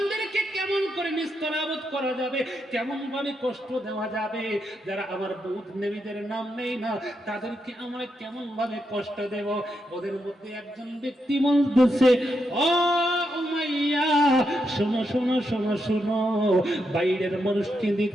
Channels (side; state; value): both; normal; correlation 0.83